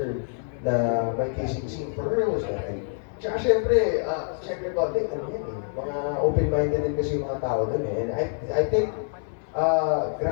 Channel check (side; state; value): right; silent; 61 dB below the other